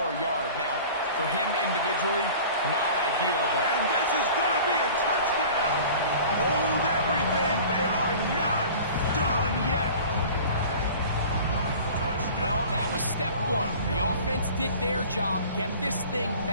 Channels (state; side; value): inverted; both; correlation -0.42